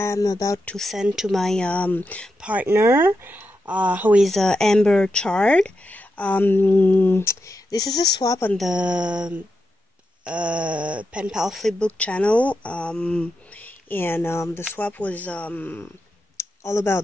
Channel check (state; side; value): normal; both; correlation 0.86